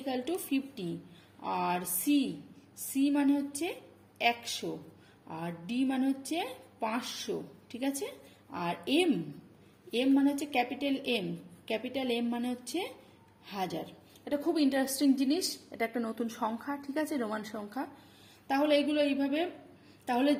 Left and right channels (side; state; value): both; identical; correlation 1.00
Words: আর সি মানে হচ্ছে 100, আর ডি মানে হচ্ছে 500। ঠিক আছে, আর এম মানে হচ্ছে ক্যাপিটাল এম মানে হচ্ছে 1000। এটা খুব ইন্টারেস্টিং জিনিস, এটা একটা নতুন সংখ্যা। ঠিক আছে, রোমান সংখ্যা। তাহলে